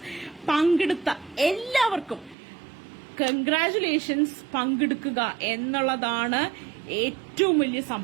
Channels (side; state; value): left; drops out; at 2.4 s